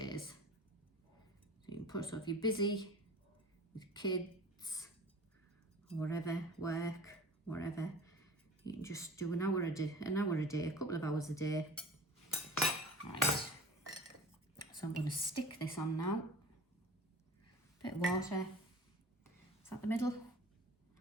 So you can put, so if you're busy with kids, or whatever, work, whatever, you can just do an hour a day, a couple of hours a day. Right. So I'm going to stick this on now. Bit of water. Is that the middle?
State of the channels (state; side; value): normal; both; correlation 0.39